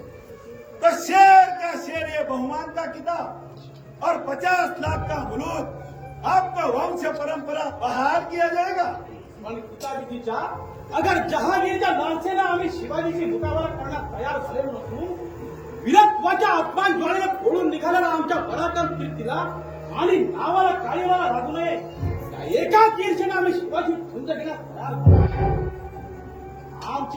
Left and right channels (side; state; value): both; identical; correlation 1.00